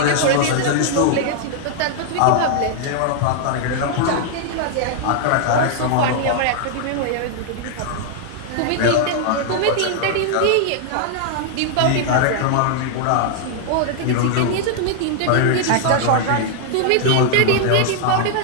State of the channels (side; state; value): both; different; correlation -0.01